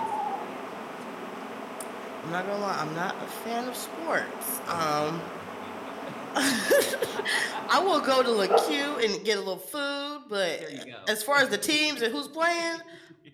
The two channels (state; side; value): identical; both; correlation 1.00